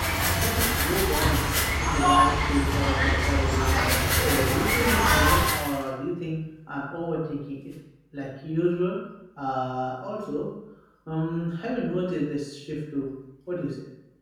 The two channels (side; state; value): both; identical; correlation 1.00